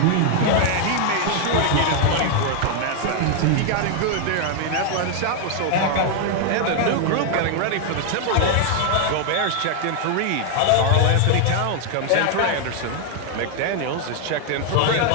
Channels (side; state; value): both; different; correlation 0.00